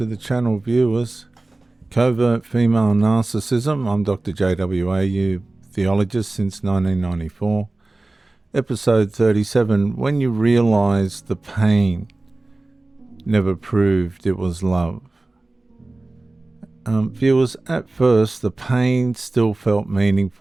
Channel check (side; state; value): left; quieter; 3.0 dB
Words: the channel, viewers. Covert Female Narcissism. I'm Dr. JWAU, theologist since 1994. Episode 37, When You Realize the Pain Never Proved It Was Love. Viewers, at first the pain still felt